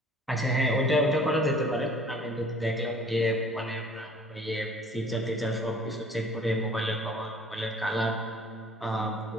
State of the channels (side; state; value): both; normal; correlation 0.51